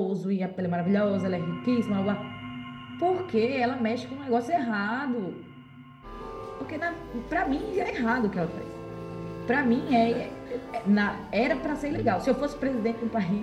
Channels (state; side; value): identical; both; correlation 1.00